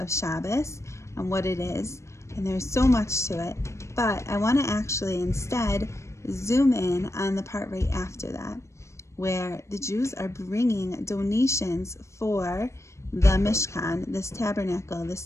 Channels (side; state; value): right; late; 0.14 ms